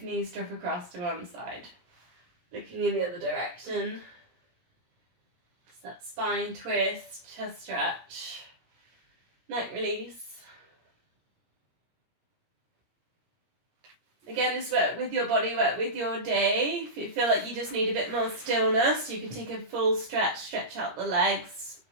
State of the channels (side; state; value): left; late; 17 ms